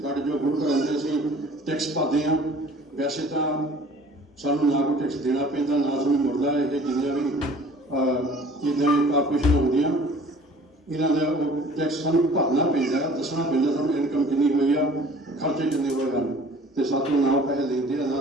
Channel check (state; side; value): normal; both; correlation 0.49